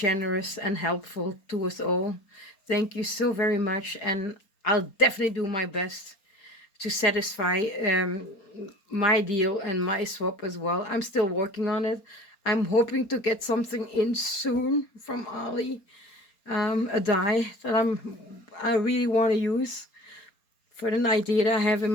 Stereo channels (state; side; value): late; right; 4.3 ms